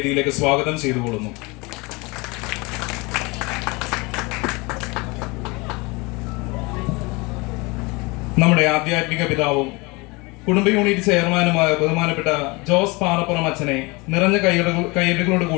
സ്വാഗതം ചെയ്തുകൊള്ളുന്നു. നമ്മുടെ ആധ്യാത്മിക പിതാവും കുടുംബ യൂണിറ്റ് ചെയർമാനുമായ ബഹുമാനപ്പെട്ട ജോസ് പാറപ്പുറം അച്ഛനെ നിറഞ്ഞ കയ്യടികളോട്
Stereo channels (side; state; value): right; quieter; 25.8 dB